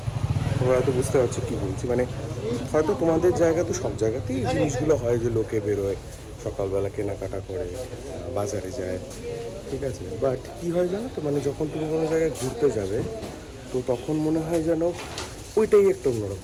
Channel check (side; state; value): both; identical; correlation 1.00